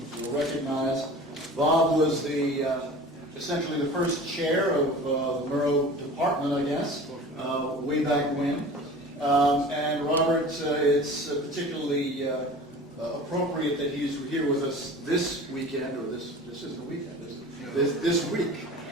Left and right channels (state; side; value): normal; both; correlation 0.39